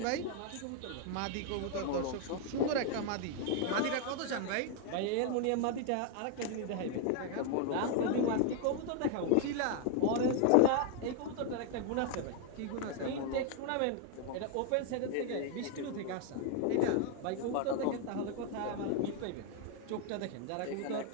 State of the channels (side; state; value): both; different; correlation 0.00